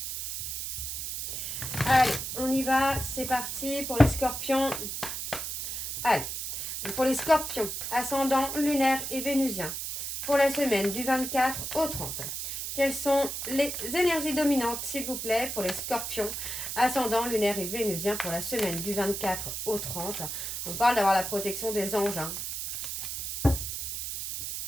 Allez, on y va, c'est parti pour les scorpions. Allez, pour les scorpions, ascendant, lunaire et vénusien, pour la semaine du 24 au 30. Quelles sont les énergies dominantes, s'il vous plaît, pour les scorpions, ascendant, lunaire et vénusien, pour la semaine du 24 au 30. On parle d'avoir la protection des anges. Hein.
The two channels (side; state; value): right; noise; hiss, 5 dB below the sound